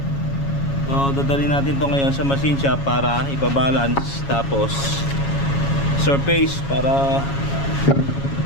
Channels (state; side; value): late; right; 7.2 ms